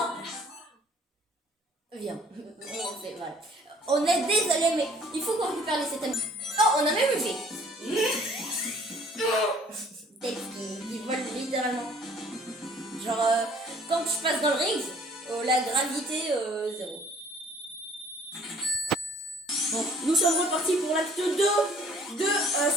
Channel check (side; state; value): both; normal; correlation 0.56